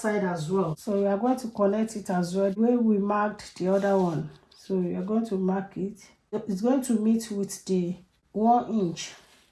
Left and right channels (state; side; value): identical; both; correlation 1.00